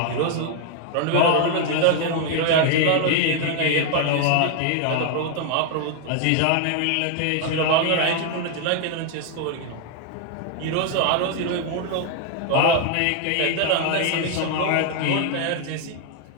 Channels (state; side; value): different; both; correlation 0.00